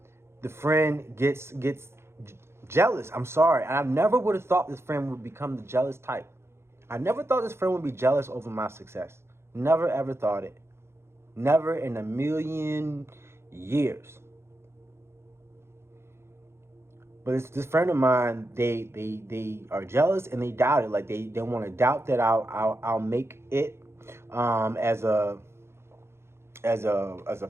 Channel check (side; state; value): left; late; 0.12 ms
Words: the friend gets jealous. I'm sorry. I never would have thought this friend would become the jealous type. I never thought this friend would be jealous over my success. Never ever thought it. Never in a million years. But it's this friend of mine. They are jealous and they doubt it. Like they want to doubt that I'll make it as a